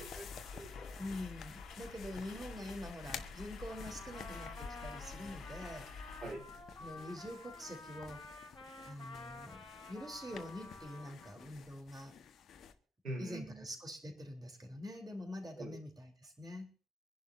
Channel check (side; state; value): both; normal; correlation 0.81